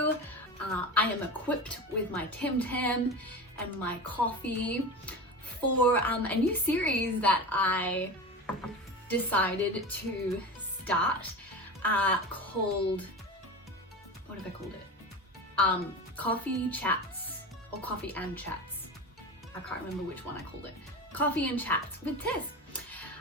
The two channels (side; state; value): both; normal; correlation 0.28